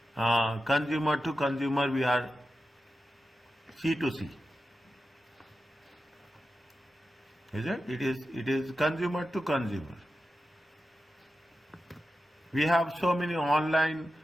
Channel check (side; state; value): both; normal; correlation 0.92